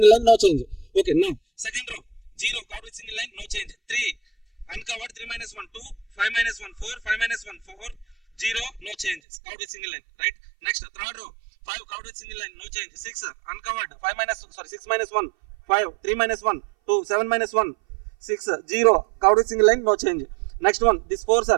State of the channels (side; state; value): left; drops out; at 9.2 s